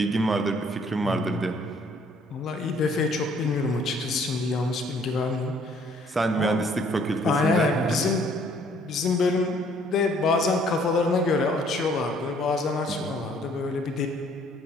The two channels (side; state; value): both; normal; correlation 0.61